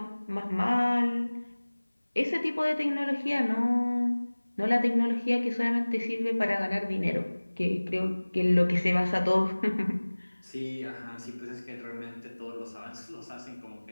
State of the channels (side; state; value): both; inverted; correlation -1.00